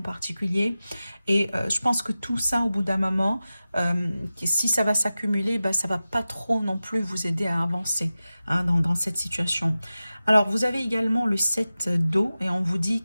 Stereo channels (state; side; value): inverted; both; correlation -0.95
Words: particulier. Et je pense que tout ça, au bout d'un moment, si ça va s'accumuler, bah, ça va pas trop non plus vous aider à avancer, hein, dans cette situation. Alors, vous avez également le 7 d'eau et on vous dit